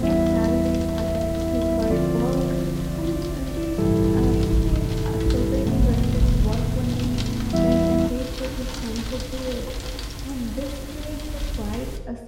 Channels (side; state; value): both; identical; correlation 1.00